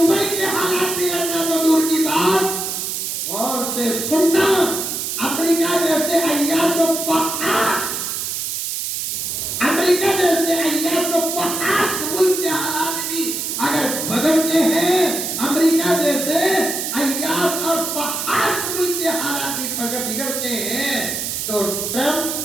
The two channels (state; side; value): noise; right; hiss, 3 dB below the sound